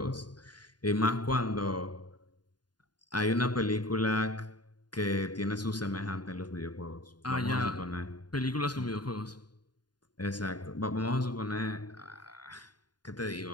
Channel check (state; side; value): late; right; 0.70 ms